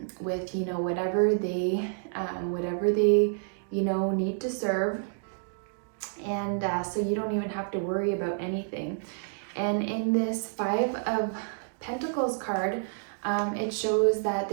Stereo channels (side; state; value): left; silent; digital silence